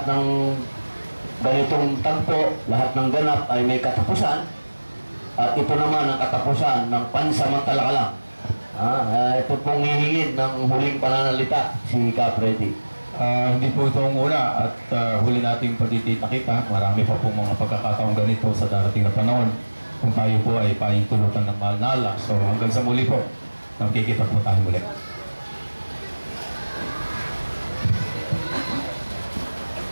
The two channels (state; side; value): inverted; both; correlation -1.00